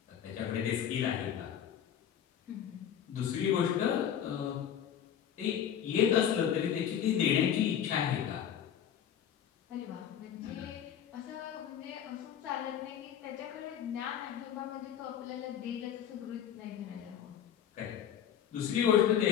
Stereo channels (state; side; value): quieter; right; 9.3 dB